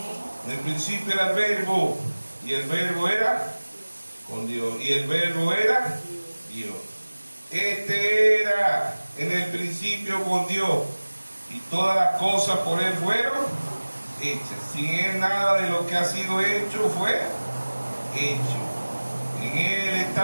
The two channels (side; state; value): both; inverted; correlation -1.00